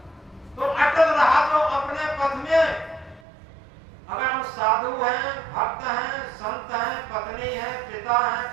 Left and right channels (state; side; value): drops out; left; at 3.2 s